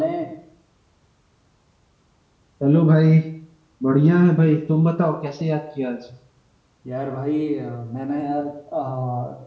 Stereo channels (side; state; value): both; identical; correlation 1.00